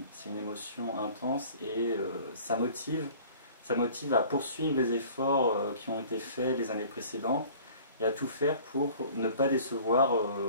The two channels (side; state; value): both; inverted; correlation -0.48